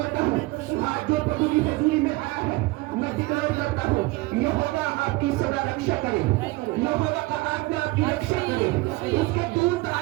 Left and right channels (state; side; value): quieter; left; 21.5 dB